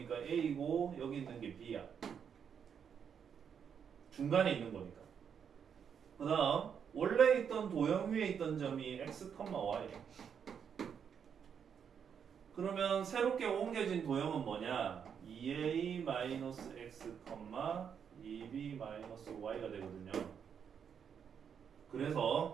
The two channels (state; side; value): quieter; left; 7.5 dB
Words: A고 여기 있는 게 B야. 중간에 있는 거니까. 그 다음 원래 있던 도형 위에 있던 점이 x, y. 그러면 새롭게 옮겨진 도형은 뭐냐? 2a-x, 2b-y가 되거든요.